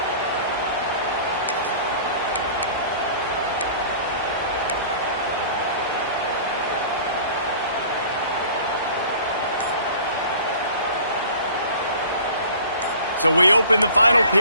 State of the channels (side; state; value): both; inverted; correlation -0.45